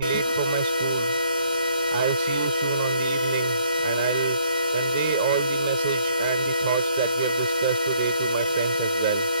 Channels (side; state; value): both; inverted; correlation -0.65